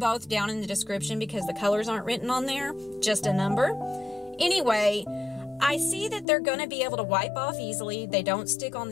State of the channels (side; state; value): right; drops out; at 6.2 s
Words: down in the description because the colors aren't written on there, just a number. Anyway, I see that they're gonna be able to wipe off easily. They don't stick on